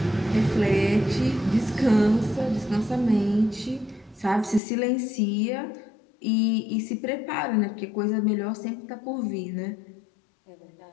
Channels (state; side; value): drops out; right; at 4.6 s